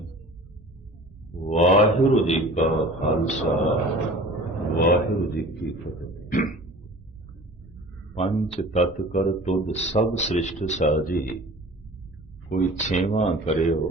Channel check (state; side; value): normal; both; correlation 0.42